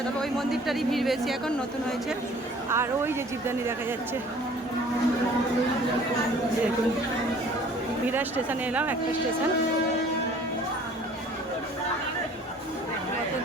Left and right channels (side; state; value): both; normal; correlation 0.52